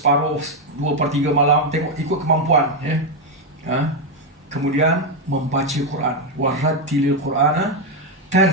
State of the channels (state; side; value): normal; both; correlation 0.04